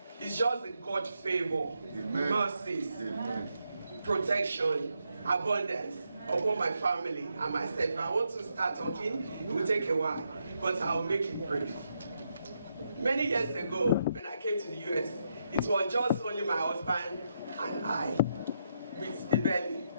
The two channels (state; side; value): inverted; both; correlation -0.80